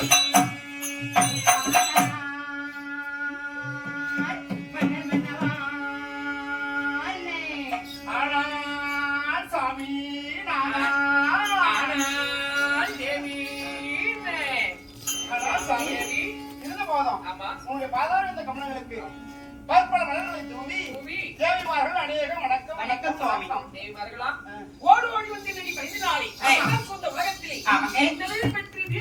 உங்களுடைய பாதாள இந்த கமலங்களுக்கு பற்பல மலர்களை தூவி தேவிமார்கள் அநேகம் வணக்கம். வணக்கம் சுவாமி. தேவிமார்களா ஓடு ஓடி வந்து நீ பதினாளி சொந்த உலகத்திலே பெற்று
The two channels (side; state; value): both; identical; correlation 1.00